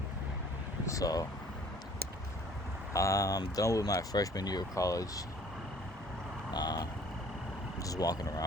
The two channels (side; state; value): both; normal; correlation 0.54